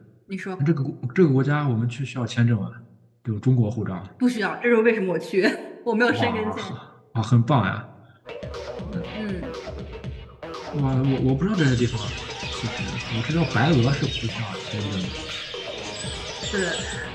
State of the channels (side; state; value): both; identical; correlation 1.00